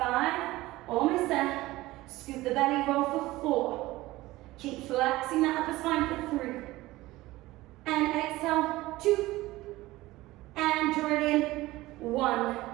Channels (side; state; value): left; quieter; 18.3 dB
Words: almost there. Scoop the belly, roll for 4. Keep flexing that upper spine for 3. And exhale, 2. And draw it in, 1.